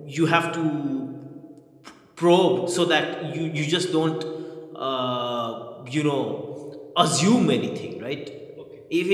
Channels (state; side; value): identical; both; correlation 1.00